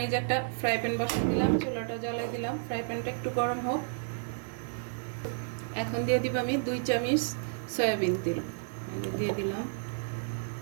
এই যে একটা ফ্রাই প্যান বসিয়ে দিলাম, চুলাটা জ্বালাই দিলাম। ফ্রাই প্যানটা একটু গরম হোক। এখন দিয়ে দিব আমি 2 চামচ সয়াবিন তেল দিয়ে দিলাম।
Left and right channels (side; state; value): left; silent; digital silence